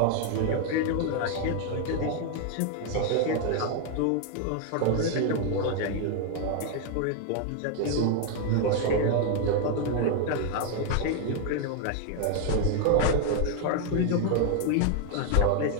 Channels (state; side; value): different; both; correlation 0.00